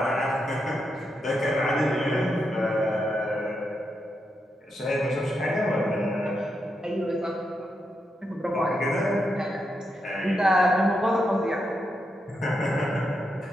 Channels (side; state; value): both; normal; correlation 0.84